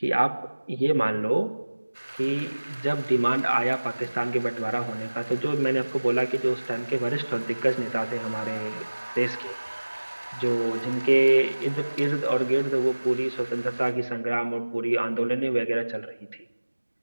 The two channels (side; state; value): both; inverted; correlation -1.00